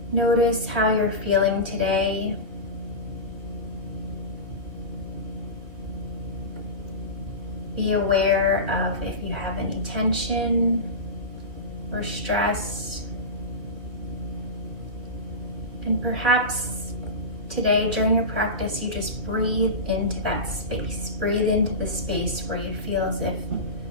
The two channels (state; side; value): late; left; 2.6 ms